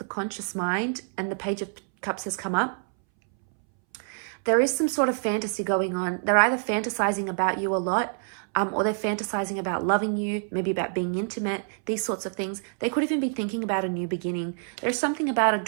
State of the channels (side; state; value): left; silent; 60 dB below the other